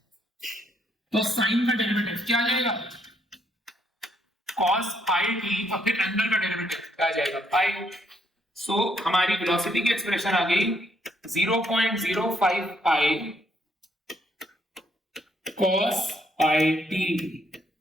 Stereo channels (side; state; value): both; normal; correlation 0.72